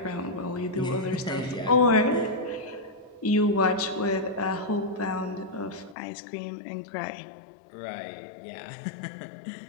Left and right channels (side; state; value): right; drops out; at 6.0 s